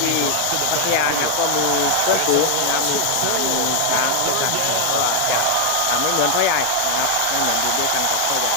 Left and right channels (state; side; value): different; both; correlation 0.00